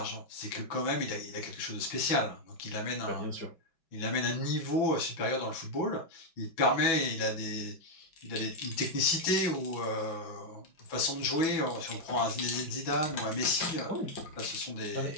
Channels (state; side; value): late; right; 5.9 ms